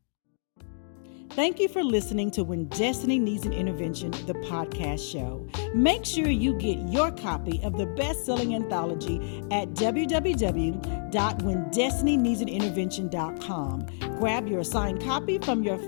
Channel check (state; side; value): silent; right; digital silence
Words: Thank you for listening to When Destiny Needs an Intervention, the podcast show. Make sure you get your copy of the best-selling anthology at www.whendestinyneedsanintervention.com. Grab your signed copy from your